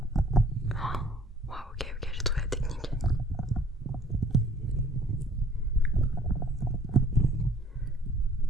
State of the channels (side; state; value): both; normal; correlation 0.56